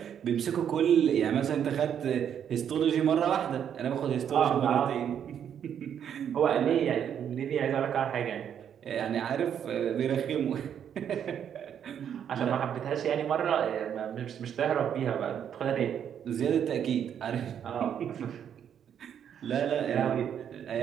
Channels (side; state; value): left; quieter; 8.8 dB